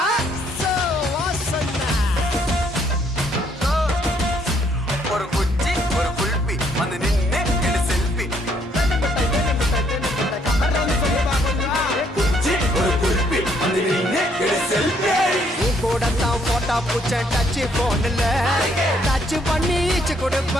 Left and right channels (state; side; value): normal; both; correlation 0.68